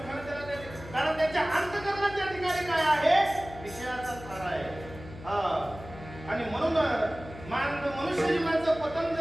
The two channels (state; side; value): noise; left; hum, 15 dB below the sound